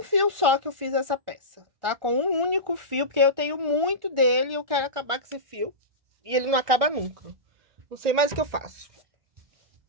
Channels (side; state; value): left; late; 1.4 ms